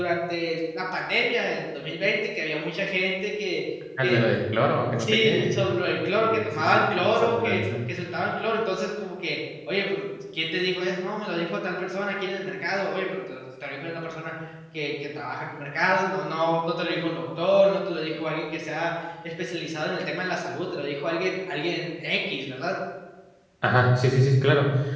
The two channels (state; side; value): identical; both; correlation 1.00